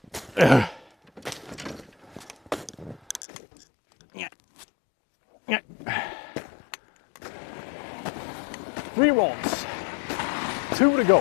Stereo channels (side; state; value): right; drops out; at 3.2 s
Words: Three rods, 2 to go.